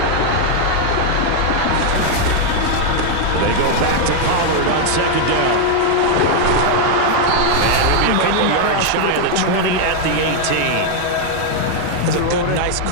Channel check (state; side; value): different; both; correlation 0.00